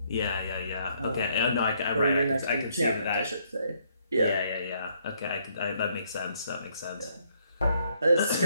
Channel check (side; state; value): both; inverted; correlation -0.70